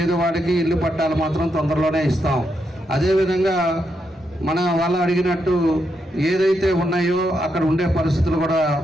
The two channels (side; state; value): both; normal; correlation 0.82